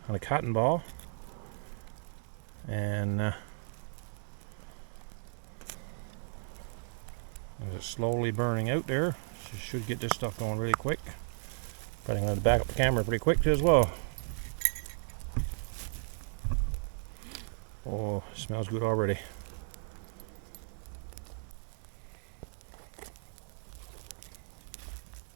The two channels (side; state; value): left; silent; digital silence